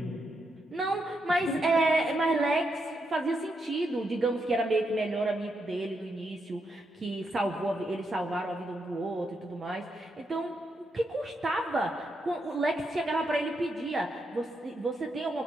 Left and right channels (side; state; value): both; normal; correlation 0.81